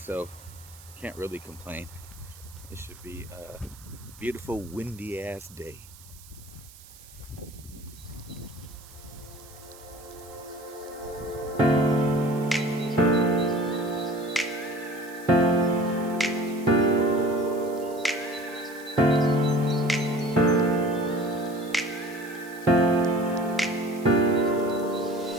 can't really complain. It should be a beautiful windy ass day.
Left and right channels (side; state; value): right; noise; hiss, 21 dB below the sound